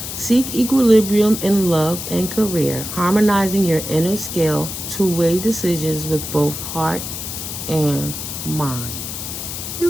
Seek equilibrium in love and career, harmonizing your inner scale to weigh decisions with both heart and mind.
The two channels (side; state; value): left; noise; hiss, 7 dB below the sound